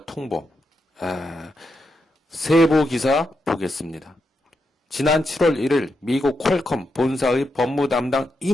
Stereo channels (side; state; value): both; normal; correlation 0.84